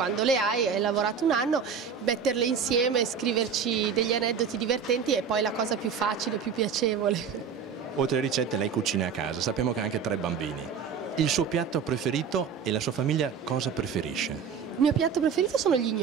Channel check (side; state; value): left; quieter; 6.6 dB